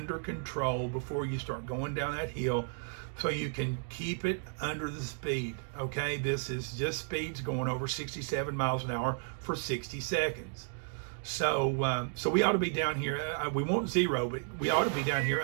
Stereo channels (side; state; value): left; silent; 56 dB below the other